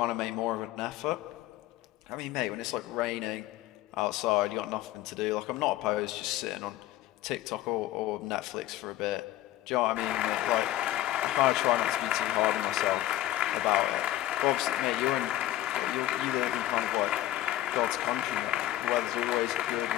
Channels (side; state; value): right; quieter; 14.8 dB